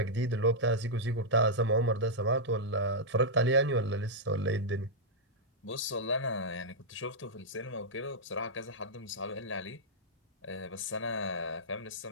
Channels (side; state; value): both; normal; correlation -0.08